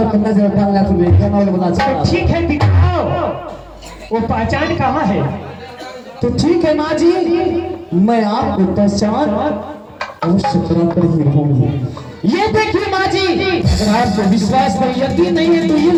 नजर डालना तुम्हें क्या नाम बता तो ठीक है दिखाओ, वो पहचान कहाँ है? तो ठीक है माँ जी, मैं आपको पहचान अवश्य करा कर ही रहूंगी। ये देखिए माँ जी, अगर आपको विश्वास पर यकीन नहीं है तो ये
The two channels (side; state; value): both; identical; correlation 1.00